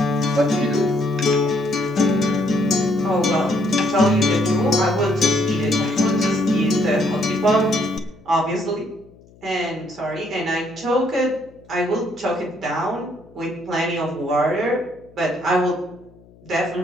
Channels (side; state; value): left; noise; hum, 26 dB below the sound